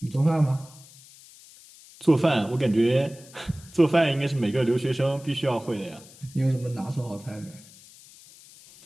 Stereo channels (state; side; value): noise; left; hiss, 22 dB below the sound